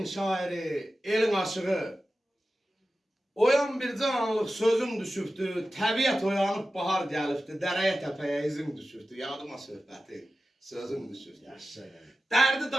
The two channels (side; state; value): both; normal; correlation 0.94